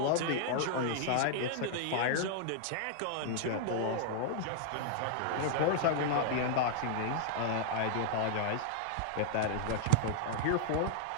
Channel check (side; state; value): both; different; correlation -0.01